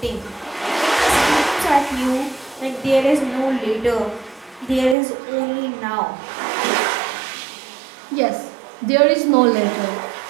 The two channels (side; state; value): left; drops out; at 5.0 s